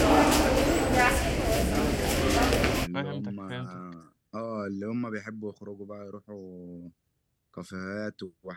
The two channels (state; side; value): identical; both; correlation 1.00